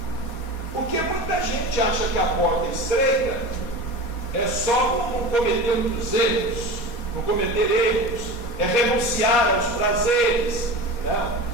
Porque muita gente acha que a porta estreita é só não cometer muitos erros, não cometer erros, é renunciar aos prazeres. Né?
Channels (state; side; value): late; right; 4.2 ms